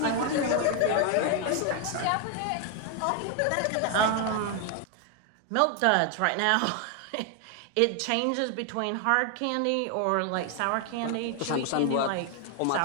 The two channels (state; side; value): different; both; correlation 0.00